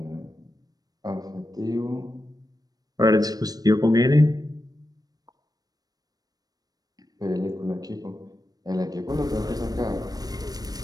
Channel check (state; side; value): late; left; 0.19 ms